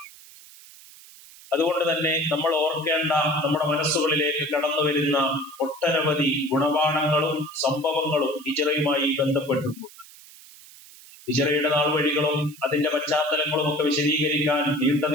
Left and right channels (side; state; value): right; noise; hiss, 21 dB below the sound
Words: അതുകൊണ്ട് തന്നെ നമ്മൾ ഓർക്കേണ്ട, നമ്മുടെ മനസ്സുകളിലേക്ക് കടന്നു വരുന്ന ഒട്ടനവധി ഗുണപാഠങ്ങളും സംഭവങ്ങളും ഹിജ്റയുമായി ബന്ധപ്പെട്ടിട്ടുണ്ട്. ഹിജ്റയുടെ നാൾവഴികളും അതിന്റെ പശ്ചാത്തലങ്ങളും ഒക്കെ വിശദീകരിക്കാൻ